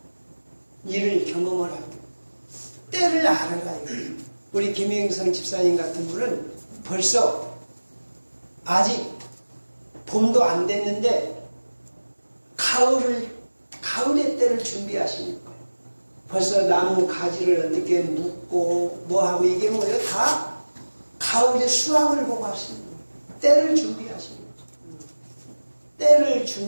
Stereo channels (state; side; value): inverted; both; correlation -1.00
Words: 일을 경험을 하고 때를 알아가요. 우리 김영성 집사님 같은 분은 벌써 아직 봄도 안 됐는데 가을의 때를 준비하시는 거예요. 벌써 나무 가지를 어떻게 묶고 뭐하고 이게 뭐예요? 다 가을에 수확을 보고 하시는 거예요. 때를 준비하시는 거예요. 때를